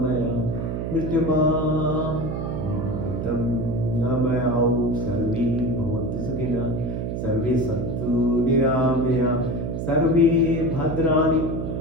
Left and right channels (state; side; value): noise; right; hum, 3 dB below the sound